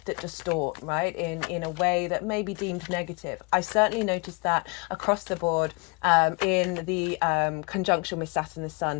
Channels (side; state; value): right; quieter; 29.9 dB